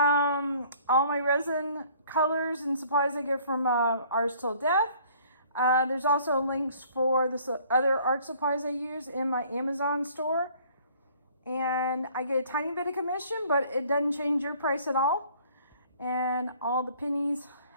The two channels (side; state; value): both; inverted; correlation -0.56